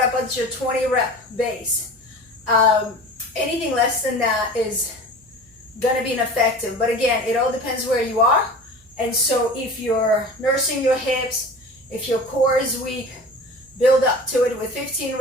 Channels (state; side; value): noise; right; hum, 30 dB below the sound